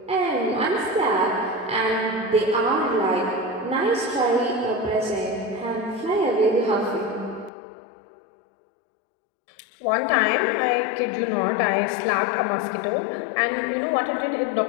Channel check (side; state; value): right; drops out; at 7.5 s